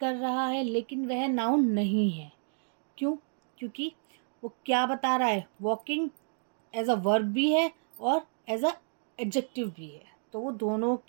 रहा है लेकिन वह नाउन नहीं है। क्यों? क्योंकि वो क्या बता रहा है? वॉकिंग एज अ वर्ब भी है और एज अ एडजेक्टिव भी है, तो वो दोनों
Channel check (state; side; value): silent; left; digital silence